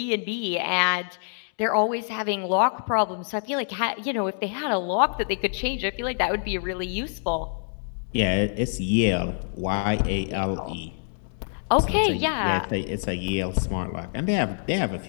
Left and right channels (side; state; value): right; silent; digital silence